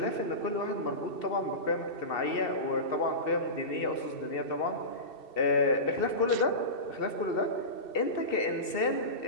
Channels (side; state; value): right; late; 2.7 ms